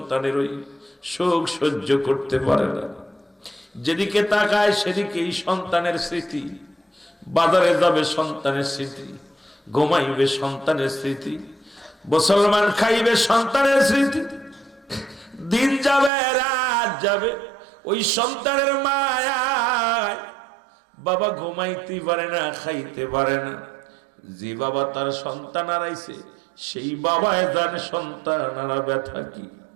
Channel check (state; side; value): drops out; left; at 16.1 s